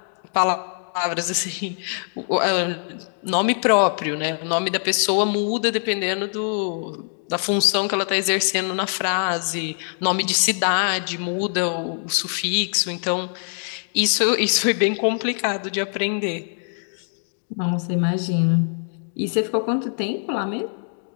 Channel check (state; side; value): silent; right; digital silence